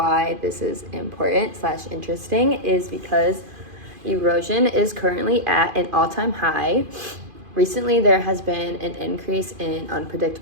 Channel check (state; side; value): late; left; 2.5 ms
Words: this is important/interesting is because erosion is currently at an all-time high. Recently, there has been an increase in